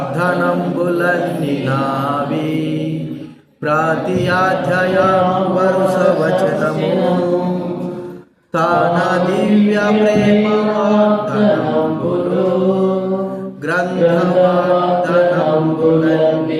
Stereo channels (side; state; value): both; identical; correlation 1.00